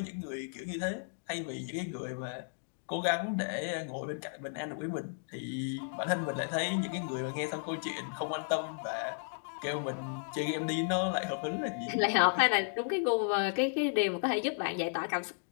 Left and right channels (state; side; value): silent; right; digital silence